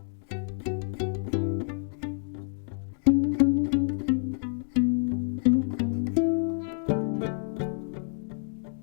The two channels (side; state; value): right; silent; 59 dB below the other